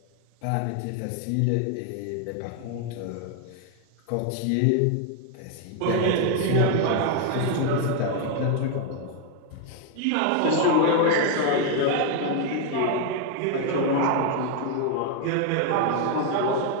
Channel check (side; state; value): both; different; correlation 0.01